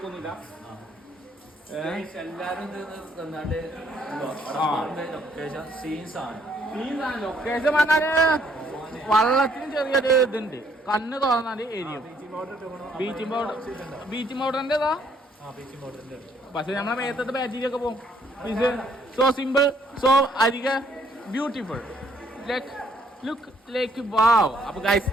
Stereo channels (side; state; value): both; normal; correlation 0.66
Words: എല്ലാരും ലൊക്കേഷൻ പറഞ്ഞാല് വള്ളത്തിന് ചെറിയൊരു ഇതുണ്ട്. കണ്ണ് തുറന്നാല് എരിയും. ബീച്ചിങ് പൗഡറിന്റെതാ. പക്ഷെ നമ്മളെ മേത്തത്തെ ബാറ്റീരിയൊക്കെ പോകും. സോ സിമ്പിൾ, സോ അധിക ബ്യൂട്ടിഫുൾ, ലുക്ക് ലൈക്ക് വാവ്. അപ്പൊ ഗൈസ്